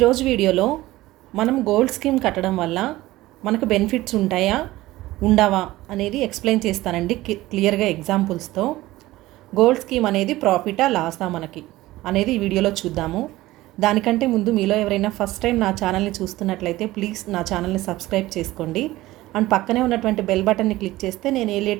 వీడియోలో మనం గోల్డ్ స్కీమ్ కట్టడం వల్ల మనకు బెనిఫిట్స్ ఉంటాయా ఉండవా అనేది ఎక్స్ప్లెయిన్ చేస్తానండి క్లియర్గా ఎగ్జాంపుల్స్తో. గోల్డ్ స్కీమ్ అనేది ప్రాఫిటా లాసా మనకి అనేది ఈ వీడియోలో చూద్దాము. దానికంటే ముందు మీలో ఎవరైనా ఫస్ట్ టైం నా ఛానల్ని చూస్తున్నట్లయితే ప్లీజ్ నా ఛానల్ని సబ్స్క్రైబ్ చేసుకోండి. అండ్ పక్కనే ఉన్నటువంటి బెల్ బటన్ని క్లిక్ చేస్తే నేను ఏ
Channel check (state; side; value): quieter; left; 17.4 dB